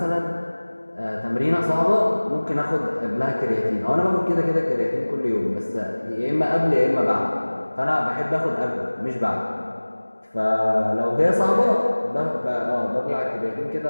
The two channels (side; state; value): both; inverted; correlation -1.00